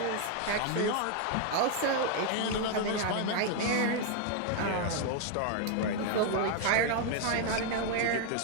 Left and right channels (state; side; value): different; both; correlation 0.00